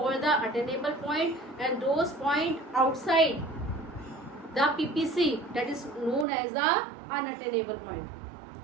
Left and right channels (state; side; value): drops out; left; at 6.2 s